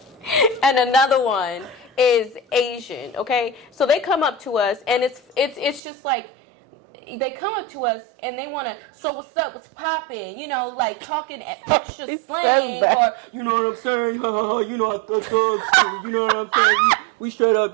another one is Asian. Okay, so they come up to us, and it's just like, they come up to us and they want to, so what's up, what's poppin', you know, like talking extra slang, or, you know what I'm saying, ha ha ha, you know, I thugs too, you know what I'm saying, we straight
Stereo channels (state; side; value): drops out; left; at 5.8 s